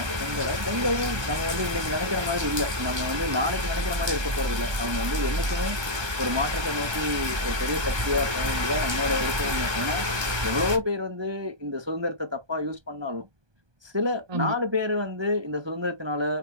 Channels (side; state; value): left; late; 1.2 ms